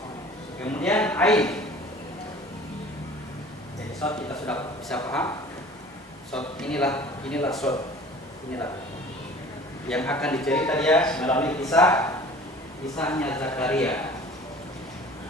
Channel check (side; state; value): both; normal; correlation 0.45